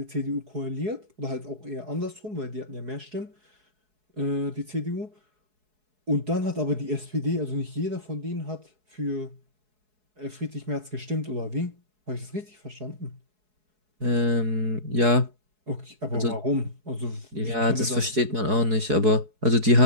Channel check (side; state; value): left; late; 4.7 ms